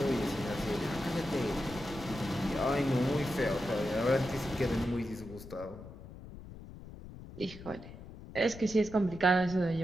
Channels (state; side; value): noise; left; rumble, 14 dB below the sound